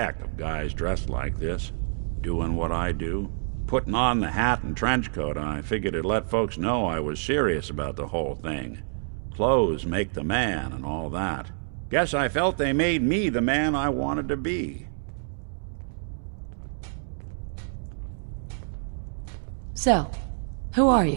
of guys dressed like this, doing what I do. Putting on the hat and trench coat, I figured it'd let folks know I was serious about the whole thing. Clothes make the man and all that. Guess I felt they made me the man I wanted to be. So, who are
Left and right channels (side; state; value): left; silent; digital silence